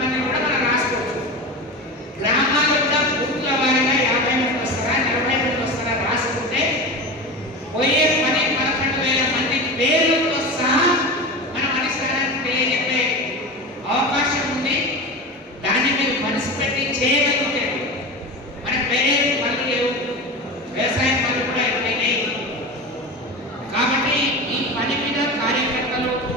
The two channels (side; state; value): both; normal; correlation 0.27